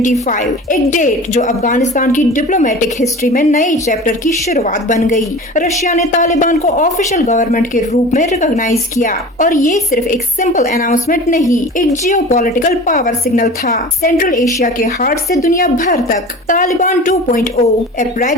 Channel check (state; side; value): normal; both; correlation 0.37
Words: एक डेट जो अफगानिस्तान की डिप्लोमेटिक हिस्ट्री में नई चैप्टर की शुरुआत बन गई। रशिया ने तालिबान को ऑफिशियल गवर्नमेंट के रूप में रिकॉग्नाइज किया और ये सिर्फ एक सिंपल अनाउंसमेंट नहीं, एक जियोपॉलिटिकल पावर सिग्नल था। सेंट्रल एशिया के हार्ट से दुनिया भर तक तालिबान 2.0 ए